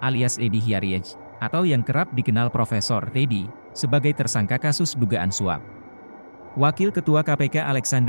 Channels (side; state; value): both; inverted; correlation -1.00